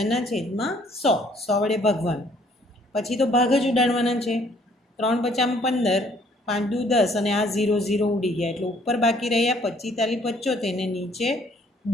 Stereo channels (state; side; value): normal; both; correlation 0.62